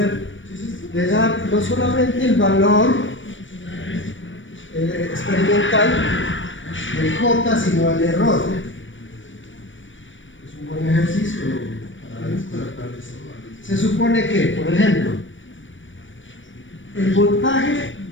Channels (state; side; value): late; right; 0.56 ms